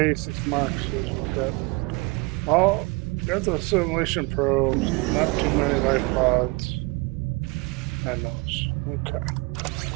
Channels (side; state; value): left; quieter; 27.2 dB